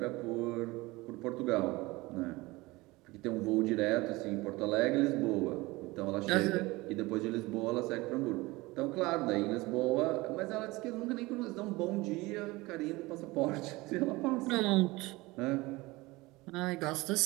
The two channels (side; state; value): left; quieter; 21.6 dB